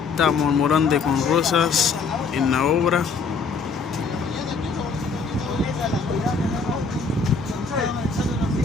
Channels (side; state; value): right; quieter; 4.9 dB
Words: estamos Morante con Rosas en la obra.